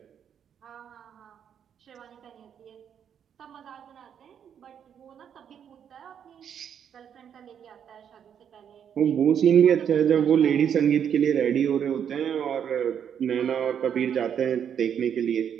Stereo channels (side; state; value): left; quieter; 8.5 dB